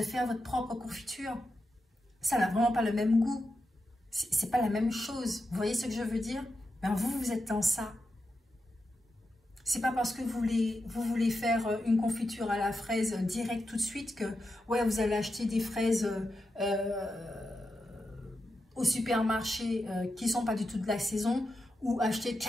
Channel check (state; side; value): normal; both; correlation 0.88